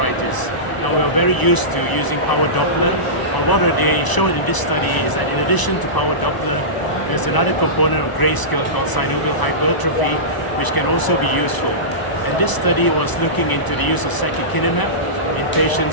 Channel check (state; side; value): late; right; 1.0 ms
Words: Now, we're very used to using power Doppler, but what they showed in this study is that in addition to power Doppler, there's another component of grayscale called synovial hypertrophy, which can also be useful. And this study was looking into the use of secukinumab in